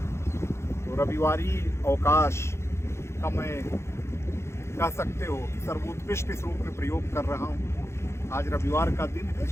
तो रविवारी अवकाश का मैं कह सकते हो कि सर्वोत्कृष्ट इस रूप में प्रयोग कर रहा हूँ। आज रविवार का दिन है,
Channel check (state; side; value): late; right; 0.13 ms